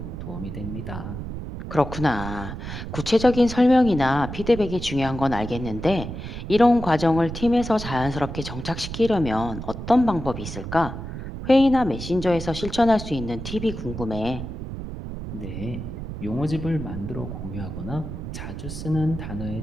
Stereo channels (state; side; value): noise; right; rumble, 8 dB below the sound